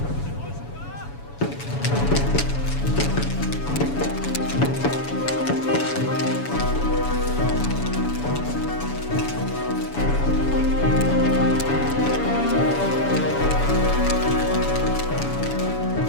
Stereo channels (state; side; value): late; right; 7.1 ms